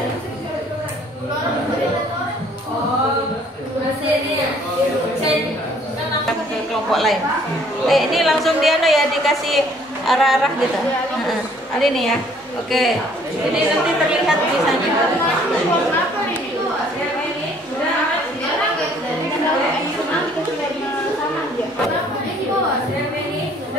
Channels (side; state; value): both; normal; correlation 0.60